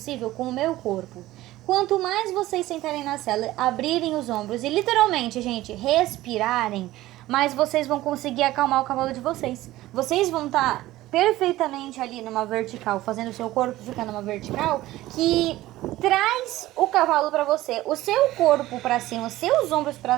com o meu corpo. Quanto mais vocês sentarem na sela, abrirem os ombros e literalmente, gente, respirarem, mais vocês vão conseguir acalmar o cavalo de vocês. Vocês vão estar perfeitamente ali numa vertical, fazendo o seu corpo ficar numa vertical, que traz o cavalo para você. O seu corpo para cima, os seus ombros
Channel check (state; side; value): quieter; left; 16.4 dB